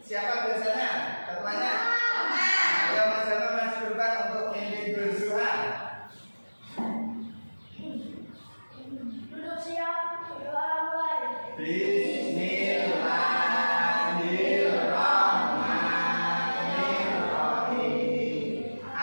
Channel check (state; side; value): inverted; both; correlation -1.00